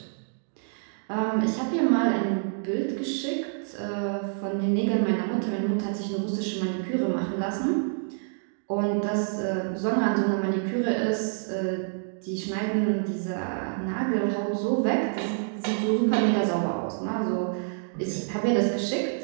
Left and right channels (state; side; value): silent; left; digital silence